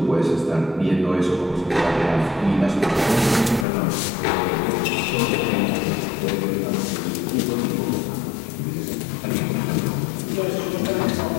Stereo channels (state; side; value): drops out; right; at 3.7 s